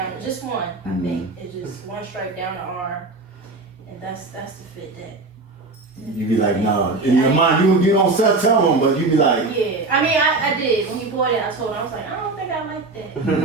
just one, I think. It's just one stripe down the arm, and that's the fit that. You be like, nah. In your mind, you don't tell them, but you be like, Yeah, I mean, I did. When he bought it, I told him, I was like, I don't think I like that.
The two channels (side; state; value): left; quieter; 3.5 dB